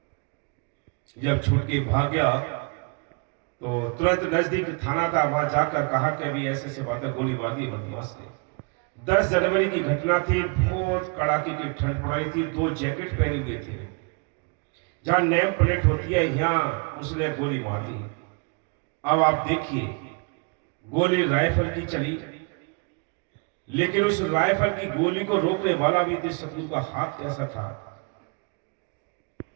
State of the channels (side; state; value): left; quieter; 33.4 dB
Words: जब छूट के भाग गया तो तुरंत नजदीक थाना था, वहां जाकर कहा कि अभी ऐसे ऐसे बातें, गोली मार दी बदमाश ने। 10 जनवरी की घटना थी, बहुत कड़ाके की ठंड पड़ रही थी। 2 जैकेट पहने हुए थे। जहां नेम प्लेट होती है यहां उसने गोली मार दी। अब आप देखिए, गोली राइफल की चली, लेकिन उस राइफल की गोली को रोकने वाला भी थे शत्रु का हाथ कैसा था,